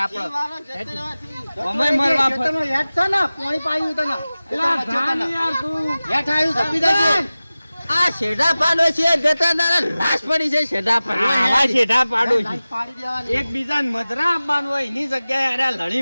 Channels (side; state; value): both; inverted; correlation -0.97